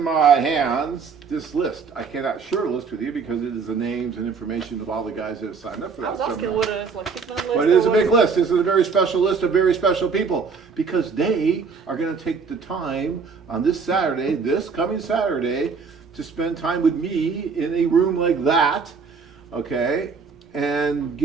my hands this list. I cannot share a list with you because it is the names and information of all the guys that have signed up for that I was asking seminar. what it is, like 6-minute list. But it is a big list. This is a very special list of very special people because they are going to take the time on this Saturday, this coming Saturday, to spend time with me in a room like that, okay, and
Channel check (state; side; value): quieter; left; 5.3 dB